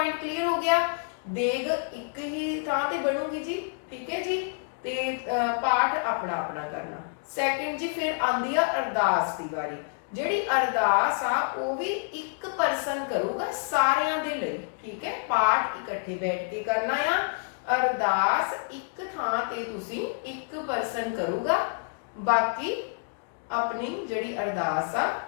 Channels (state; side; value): silent; right; digital silence